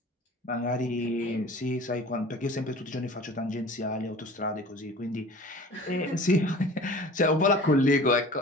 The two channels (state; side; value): normal; both; correlation 0.43